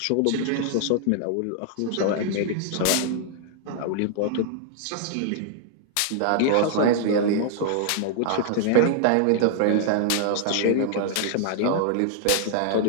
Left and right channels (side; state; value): both; different; correlation -0.01